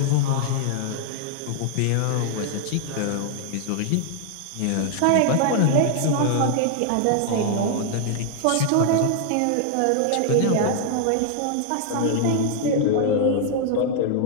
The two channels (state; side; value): different; both; correlation 0.00